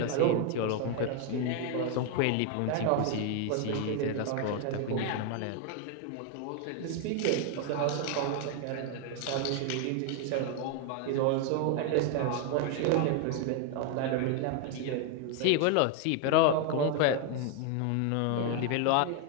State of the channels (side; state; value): both; different; correlation 0.01